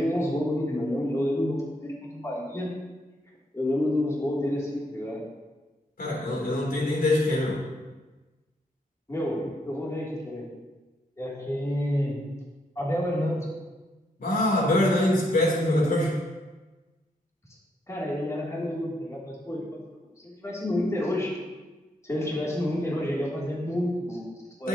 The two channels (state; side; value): normal; both; correlation 0.76